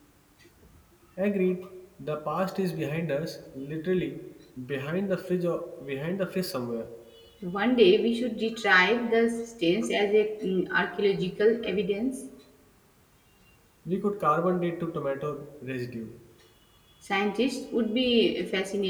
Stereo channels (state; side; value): identical; both; correlation 1.00